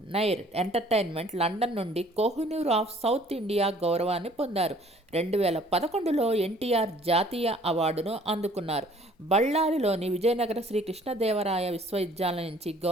నైర్ ఎంటర్టైన్మెంట్ లండన్ నుండి కోహినూర్ ఆఫ్ సౌత్ ఇండియా గౌరవాన్ని పొందారు. 2011లో ఎన్టీఆర్ జాతీయ అవార్డును అందుకున్నారు. బళ్ళారిలోని విజయనగర శ్రీ కృష్ణదేవరాయ విశ్వవిద్యాలయం నుంచి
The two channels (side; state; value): both; normal; correlation 0.56